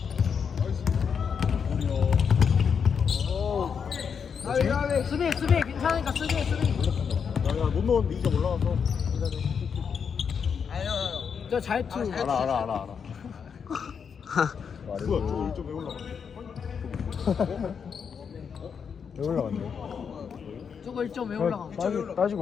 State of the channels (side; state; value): right; quieter; 6.7 dB